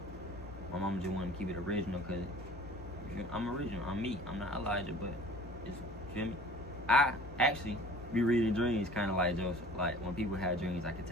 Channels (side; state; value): both; normal; correlation 0.47